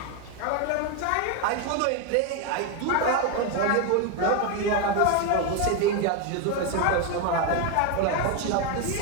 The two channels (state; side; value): different; both; correlation 0.02